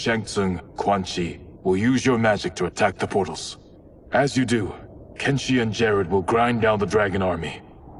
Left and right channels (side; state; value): both; identical; correlation 1.00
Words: Tsung, Quan Chi, will use your magic to attack the portals. As you do, Kenshi and Jared will grind down the dragon army.